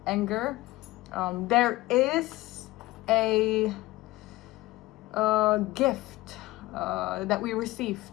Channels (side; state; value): right; quieter; 18.8 dB